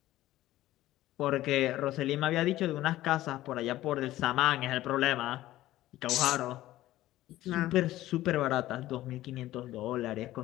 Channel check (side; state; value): right; quieter; 15.3 dB